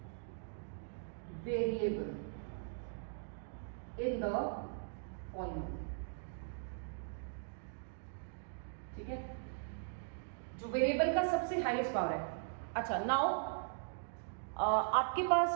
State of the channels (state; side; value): silent; left; digital silence